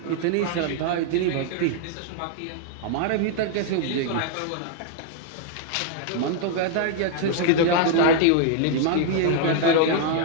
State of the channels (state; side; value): different; both; correlation 0.00